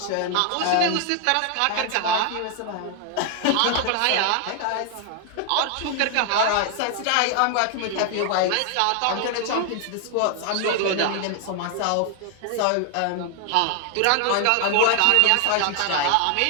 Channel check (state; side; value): different; both; correlation 0.00